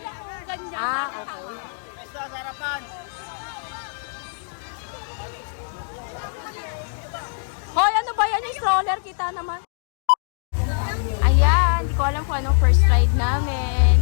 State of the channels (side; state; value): right; silent; digital silence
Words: oh, ganyan. Ah, okay. Basta sa harapan. Hoy, ano ba yan? Yung stroller, kita naman. Ayan, hindi ko alam kung anong first ride namin.